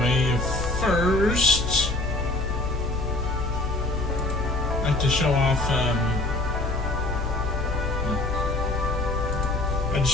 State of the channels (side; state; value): left; noise; hum, 5 dB below the sound